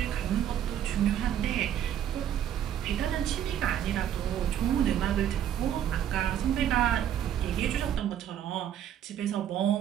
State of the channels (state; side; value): quieter; left; 10.3 dB